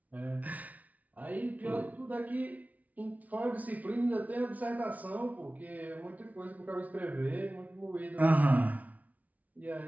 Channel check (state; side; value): late; left; 0.071 ms